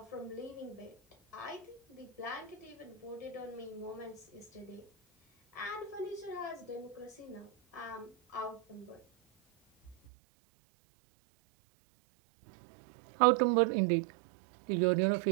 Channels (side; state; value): left; drops out; at 10.0 s